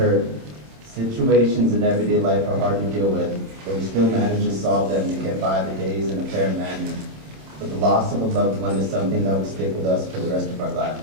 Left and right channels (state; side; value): late; left; 27 ms